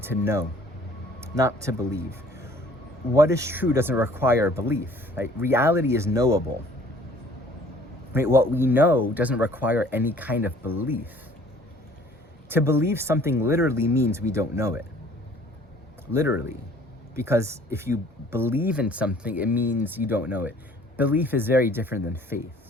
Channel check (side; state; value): both; normal; correlation 0.55